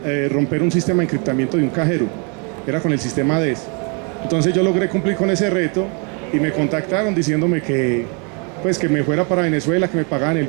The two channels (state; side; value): quieter; left; 35.4 dB